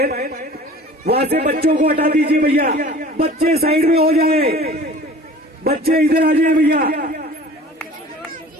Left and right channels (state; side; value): normal; both; correlation 0.45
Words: वहां से बच्चों को हटा दीजिए भैया, बच्चे साइड में हो जाए, बच्चे इधर आ जाए भैया।